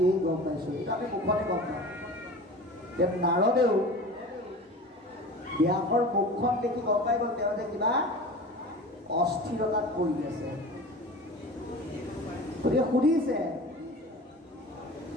গম পাইছোঁ এইটো আমি মুখতে গম পাওঁ নাৰদেও ব্যাসৰ মুখখন দেখি গম পাই গ'ল তেওঁ যে কিবা অস্থিৰতাত পৰি আছে গতিকে সুধিছে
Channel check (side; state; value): both; normal; correlation 0.36